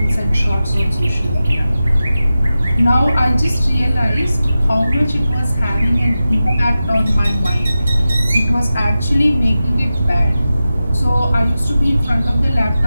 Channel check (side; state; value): both; inverted; correlation -0.93